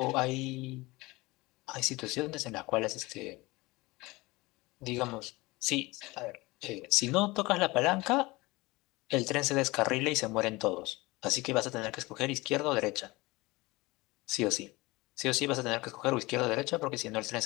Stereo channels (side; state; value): right; quieter; 22.1 dB